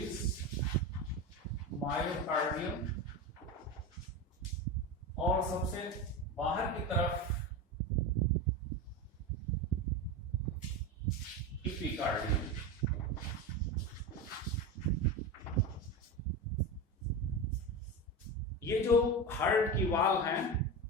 myocardium. और सबसे बाहर की तरफ एपिकार्डियम। ये जो हार्ट की वॉल हैं,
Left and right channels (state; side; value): normal; both; correlation 0.22